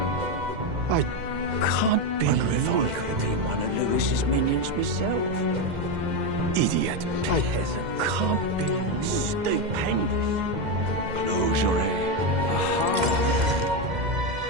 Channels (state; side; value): late; left; 2.1 ms